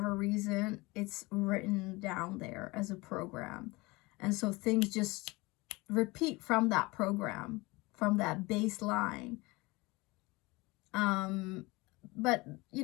reason, it's written down there as a program. And so things just repeat from that program, from that baseline. But, you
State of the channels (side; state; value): right; quieter; 23.3 dB